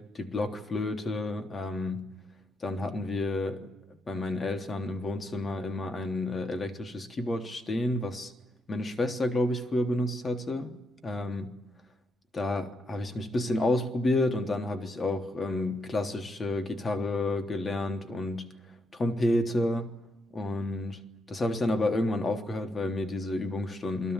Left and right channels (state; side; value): normal; both; correlation 0.79